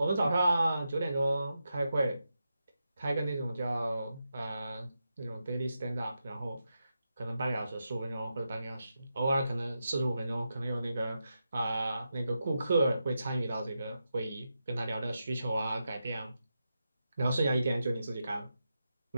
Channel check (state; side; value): inverted; both; correlation -0.88